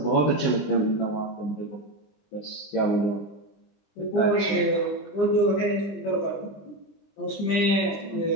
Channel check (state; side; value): late; right; 20 ms